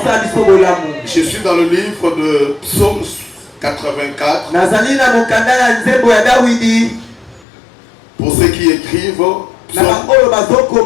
Je suis dans le livre de Psaume 84. Pour ceux qui écrivent,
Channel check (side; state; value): right; drops out; at 7.5 s